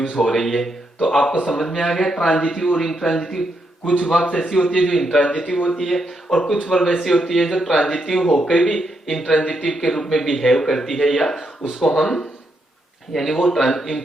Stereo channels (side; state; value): both; normal; correlation 0.80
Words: हो रही है। तो आपको समझ में आ गया ट्रांजिटिव और इंट्रांजिटिव। कुछ वर्ब ऐसी होती है जो इंट्रांजिटिव होती है और कुछ वर्ब ऐसी होती है जो ट्रांजिटिव होकर भी इंट्रांजिटिव के रूप में बिहेव करती है, या उसको हम, यानी वो